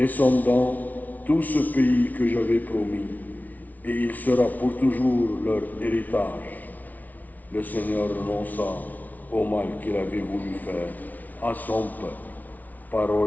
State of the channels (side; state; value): right; late; 0.076 ms